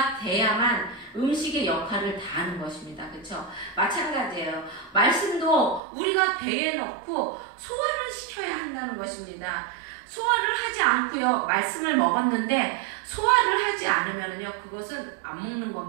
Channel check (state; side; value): drops out; left; at 5.8 s